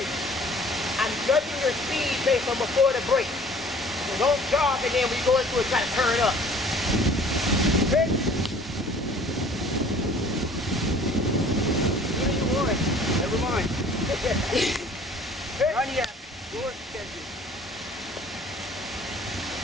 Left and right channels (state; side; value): normal; both; correlation 0.51